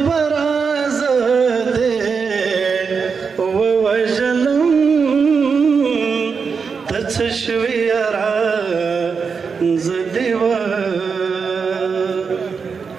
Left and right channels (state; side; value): quieter; left; 5.6 dB